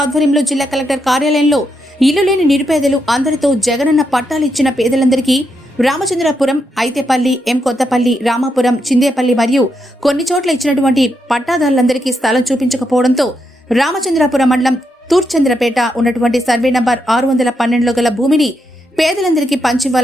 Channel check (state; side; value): normal; both; correlation 0.81